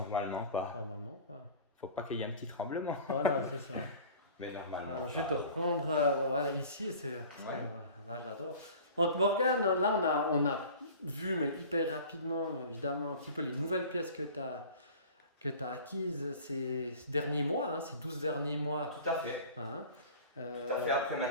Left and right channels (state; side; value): inverted; both; correlation -0.42